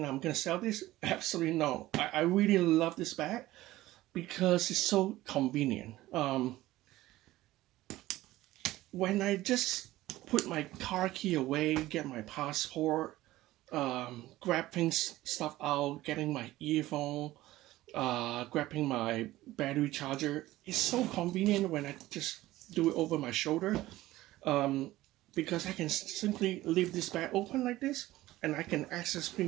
I'm going to sell this? Absolutely no. I really love this bag because it's so convenient. When I just put my car key away, get my passport, grab stuff out, getting my earphone, grabbing my battery charger, it's so convenient when I just do it over my shoulder. Because I can simply leave this bag open like this, and I can access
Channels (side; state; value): left; quieter; 16.6 dB